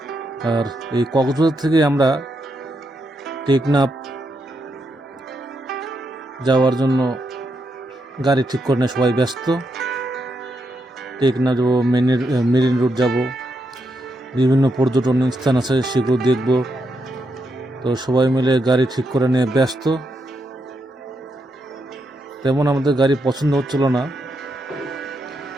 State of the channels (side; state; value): both; normal; correlation 0.81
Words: আর এই কক্সবাজার থেকে আমরা টেকনাফ যাওয়ার জন্য গাড়ি ঠিক করে নিয়ে সবাই ব্যস্ত। টেকনাফ যাবো, মেরিন রোড যাব, বিভিন্ন পর্যটন স্থান আছে সেগুলো দেখব। তো সবাই মিলে গাড়ি ঠিক করে নিয়ে ব্যস্ত। তেমন আমাদের গাড়ি পছন্দ হচ্ছিল না।